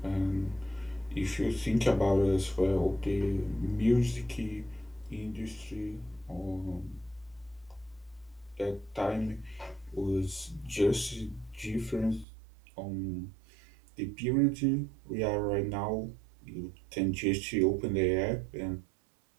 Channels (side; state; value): left; drops out; at 12.2 s